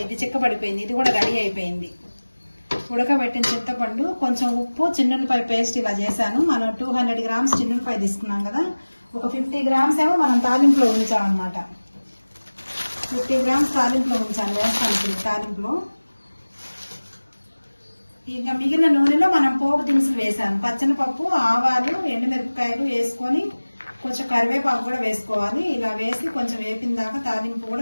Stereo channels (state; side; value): inverted; both; correlation -1.00